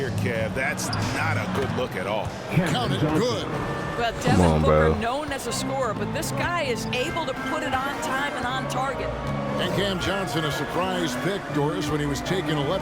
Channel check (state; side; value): identical; both; correlation 1.00